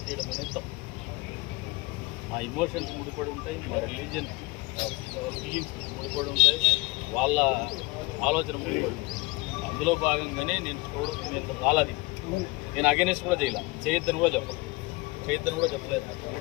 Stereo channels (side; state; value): right; quieter; 24.4 dB